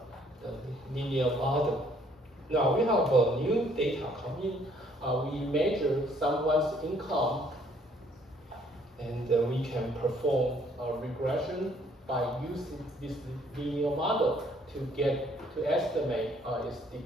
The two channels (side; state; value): both; normal; correlation 0.63